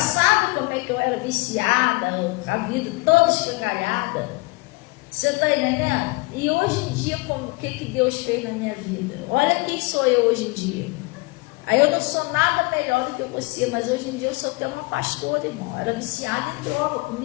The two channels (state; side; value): quieter; right; 25.2 dB